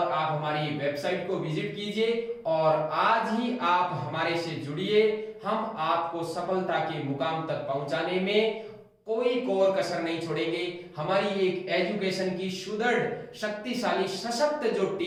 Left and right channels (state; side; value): identical; both; correlation 1.00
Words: आप हमारी वेबसाइट को विजिट कीजिए और आज ही आप हमारे से जुड़िए। हम आपको सफलता के मुकाम तक पहुंचाने में कोई कोर कसर नहीं छोड़ेंगे। हमारी एक एजुकेशन की सुदृढ़, शक्तिशाली, सशक्त जो